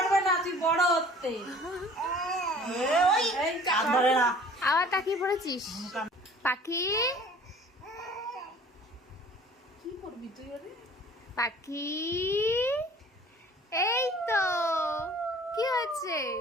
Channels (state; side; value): normal; both; correlation 0.49